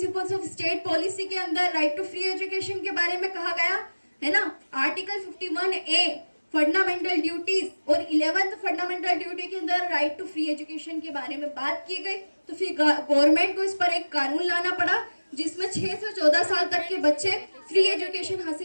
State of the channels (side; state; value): both; inverted; correlation -1.00